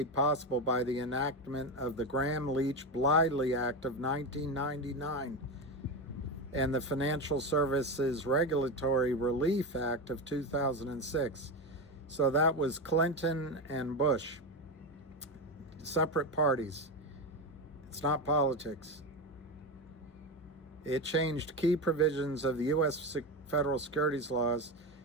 possible by the enactment of the Gramm-Leach-Bliley Act of 1999 and the Financial Services Regulatory Relief Act of 2006. So that was Clinton and Bush, separate parties. It's not politics. It changed key provisions of the U.S. federal securities laws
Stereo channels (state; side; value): normal; both; correlation 0.17